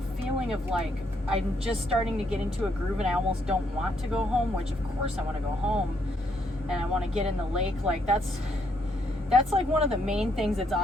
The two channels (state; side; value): normal; both; correlation 0.73